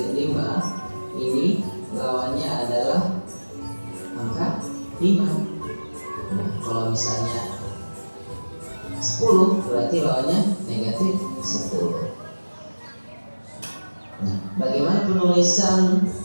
5, ini lawannya adalah angka 5. Nah, kalau misalnya 10 berarti lawannya negatif 10. Nah, bagaimana penulisan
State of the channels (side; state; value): both; inverted; correlation -1.00